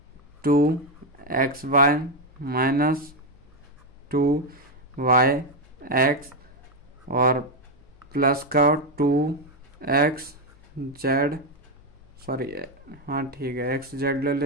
2xy माइनस 2yx और प्लस का 2xz सॉरी, हाँ ठीक है, एक्स जेड ले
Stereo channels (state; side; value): noise; left; hum, 27 dB below the sound